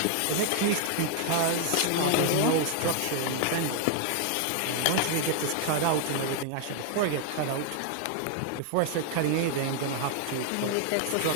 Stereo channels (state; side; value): different; both; correlation 0.00